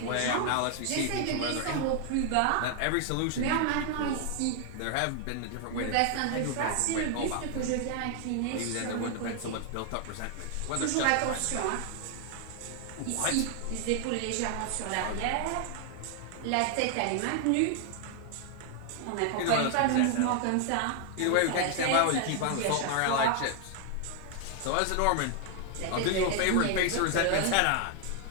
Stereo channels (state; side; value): different; both; correlation 0.00